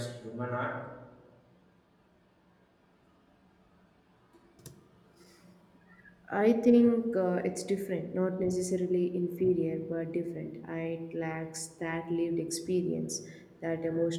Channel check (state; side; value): identical; both; correlation 1.00